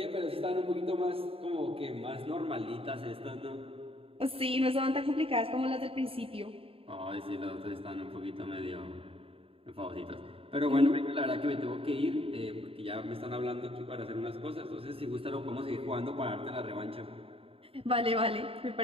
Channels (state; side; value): late; left; 0.27 ms